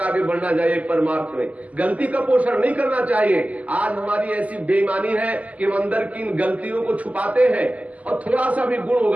आगे बढ़ना चाहिए परमार्थ में। गलती का पोषण नहीं करना चाहिए। आज हमारी ऐसी बेईमानी है कि हम अंदर की इन गलतियों को छुपाते हैं और थोड़ा सा भी गुण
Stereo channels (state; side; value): late; left; 0.072 ms